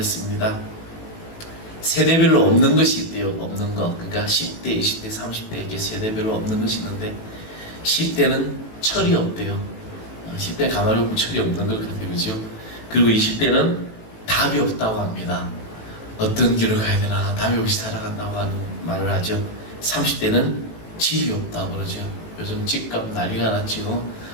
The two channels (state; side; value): late; right; 18 ms